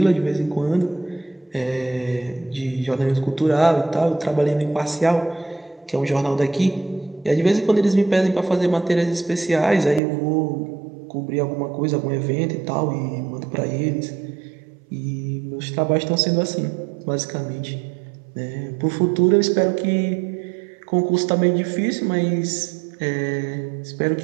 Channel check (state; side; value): drops out; left; at 10.0 s